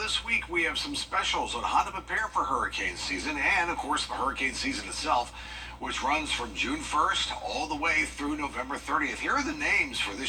week we have some specials on how to prepare for hurricane season, and of course, the hurricane season itself, which runs from June 1st all the way through November 30th. Here are the names for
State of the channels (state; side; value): identical; both; correlation 1.00